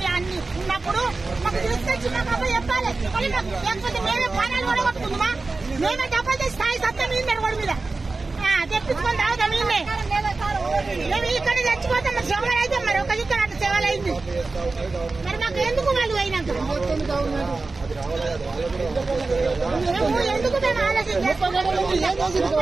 అన్ని ఉన్నప్పుడు మాకు తీసుకొచ్చి మాకు చెప్పాలి. లేకపోతే మేమే ప్రాణాలు కూడా కొట్టుకుందామా? మేమే డబ్బులు తెచ్చి స్థాయి సత్తా మీద గొడవ మీద తెప్పించుకొని తాగుతాం. మేము ఇక్కడ చచ్చిపోతాం. మరి సేవలు అయితే మరి ఒక ఇక్కడ అట్లా సేవలు అయింది. మరి మాకు ఎందుకు వాళ్ళు అయినాక మేము ఎందుకు మేము ఆలోచన గంటల కోలే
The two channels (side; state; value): left; quieter; 3.7 dB